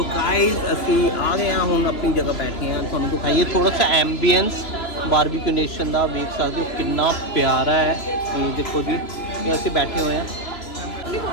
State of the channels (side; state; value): right; late; 3.0 ms